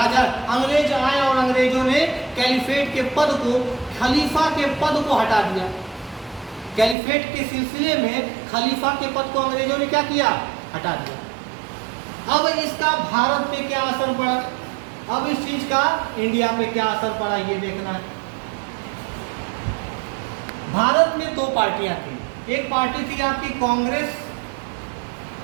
अंग्रेज आए और अंग्रेजों ने कैलिफेट के पद को, खलीफा के पद को हटा दिया। कैलिफेट के सिलसिले में खलीफा के पद को अंग्रेजों ने क्या किया? हटा दिया। अब इसका भारत पे क्या असर पड़ा? अब इस चीज का इंडिया पे क्या असर पड़ा, ये देखना है। भारत में दो पार्टियां थी। एक पार्टी थी आपकी कांग्रेस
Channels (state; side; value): drops out; left; at 7.0 s